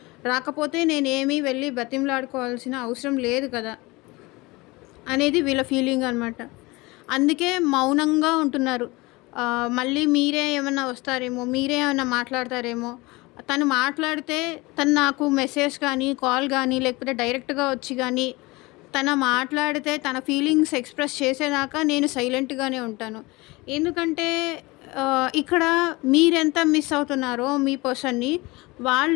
రాకపోతే నేనేమి వెళ్ళి బతిమలాడుకోవాల్సిన అవసరం లేదు కదా! అనేది వీళ్ళ ఫీలింగ్ అనమాట. అందుకే మౌనంగా ఉంటున్నారు. మళ్ళీ మీరే ఏమన్నా వస్తారేమో, మీరే ఏమన్నా మాట్లాడతారేమో. తను మాట్లాడితే తను నాకు మెసేజ్ కానీ, కాల్ గానీ, లేకపోతే డైరెక్ట్‌గా వచ్చి గానీ, మాట్లాడితే తన ఫీలింగ్స్ ఎక్స్‌ప్రెస్ చేసేదాకా నేను సైలెంట్‌గానే ఉంటాను. ఎందుకంటే ఇక్కడ మీరెంత మిస్ అవుతున్నారో మీ పర్సన్‌ని,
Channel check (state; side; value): quieter; right; 23.1 dB